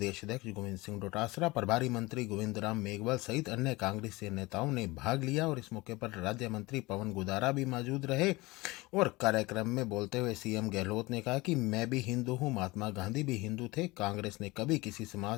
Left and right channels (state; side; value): quieter; right; 22.0 dB